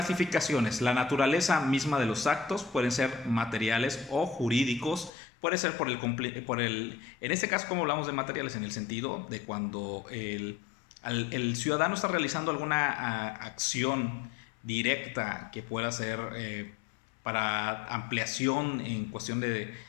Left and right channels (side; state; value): right; drops out; at 5.1 s